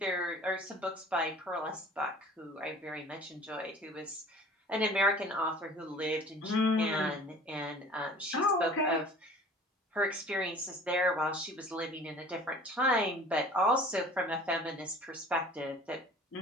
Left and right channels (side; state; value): both; normal; correlation 0.46